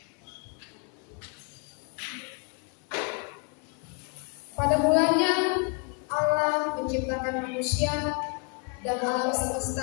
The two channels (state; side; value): quieter; right; 37.1 dB